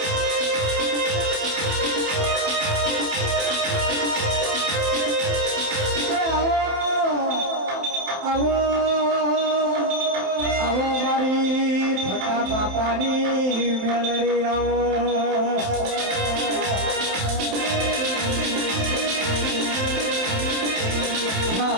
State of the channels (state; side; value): late; left; 28 ms